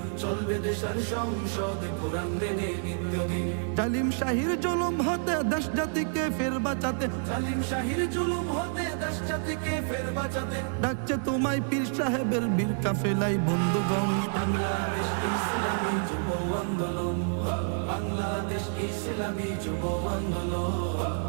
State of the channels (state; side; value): silent; left; digital silence